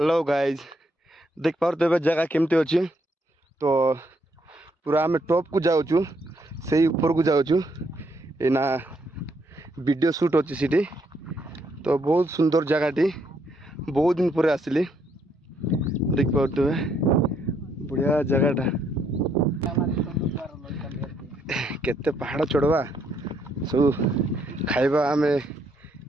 guys देख पारे जगह केमती अच्छी तो पूरा आम टॉप को जाऊँ से ऊपर को जाऊँ एना वीडियो शूट अच्छी सीटी तो बहुत सुंदर जगहटी बहुत दिन पर आसली देख पारे बढ़िया जगहटा केते पहाड़ चढ़वा सब खाइबा आम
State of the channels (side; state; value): both; normal; correlation 0.73